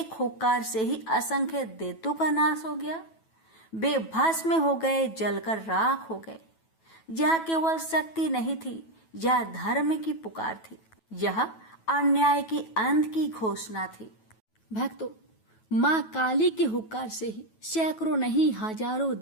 हुक्कार से ही असंख्य दैत्यों का नाश हो गया। वे भस्म हो गए, जलकर राख हो गए। यह केवल शक्ति नहीं थी, यह धर्म की पुकार थी, यह अन्याय की अंत की घोषणा थी। भक्तों, माँ काली के हुक्कार से ही सैकड़ों नहीं हजारों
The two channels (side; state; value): right; late; 9.2 ms